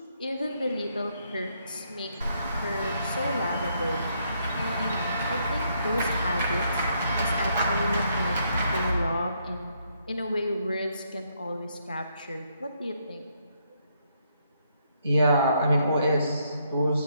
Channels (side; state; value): both; inverted; correlation -0.74